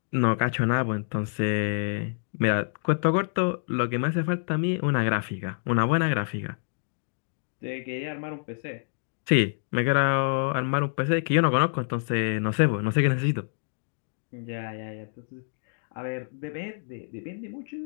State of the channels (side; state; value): right; silent; digital silence